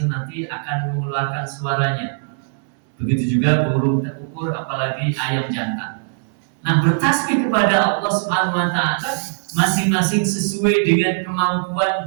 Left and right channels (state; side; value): silent; left; digital silence